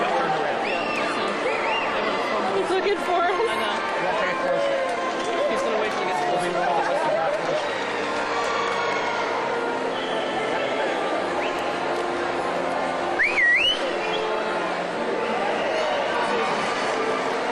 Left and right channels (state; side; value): identical; both; correlation 1.00